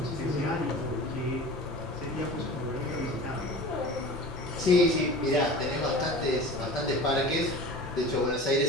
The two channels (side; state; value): left; noise; hum, 20 dB below the sound